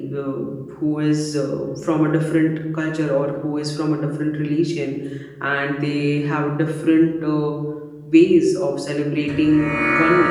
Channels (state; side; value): identical; both; correlation 1.00